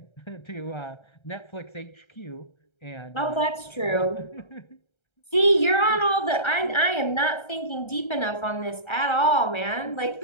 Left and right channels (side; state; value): right; late; 1.3 ms